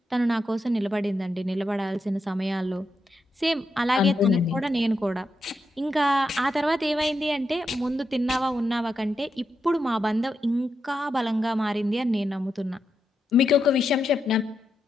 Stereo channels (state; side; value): normal; both; correlation 0.85